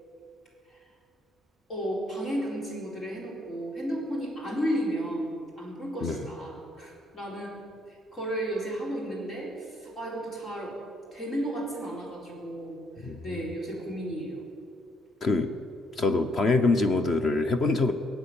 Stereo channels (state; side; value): normal; both; correlation 0.71